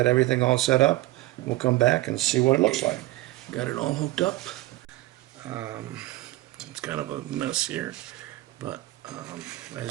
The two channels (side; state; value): left; quieter; 18.0 dB